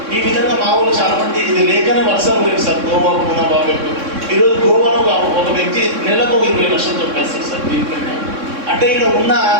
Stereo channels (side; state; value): left; late; 3.6 ms